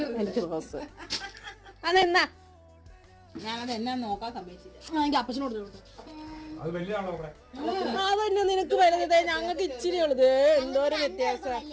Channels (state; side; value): identical; both; correlation 1.00